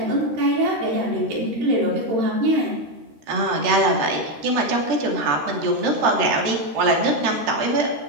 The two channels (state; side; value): late; left; 13 ms